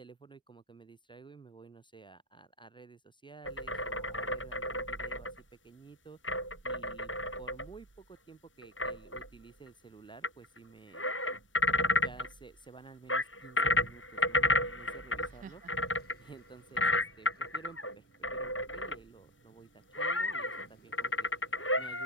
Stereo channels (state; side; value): normal; both; correlation 0.24